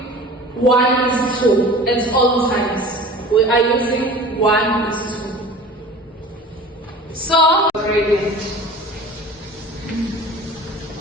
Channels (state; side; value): normal; both; correlation 0.41